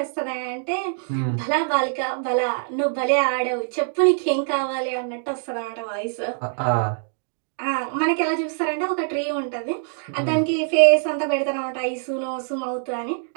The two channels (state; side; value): silent; left; 63 dB below the other